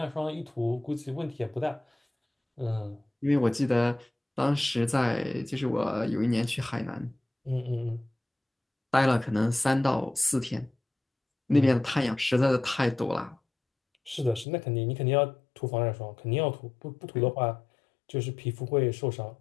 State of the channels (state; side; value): drops out; right; at 14.5 s